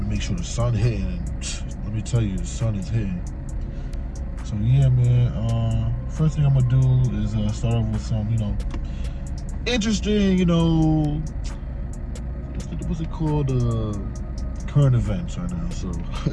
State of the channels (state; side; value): identical; both; correlation 1.00